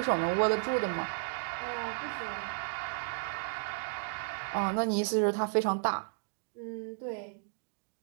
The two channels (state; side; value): silent; left; digital silence